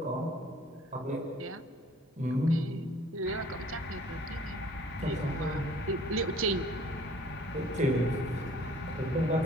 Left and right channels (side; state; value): both; normal; correlation 0.54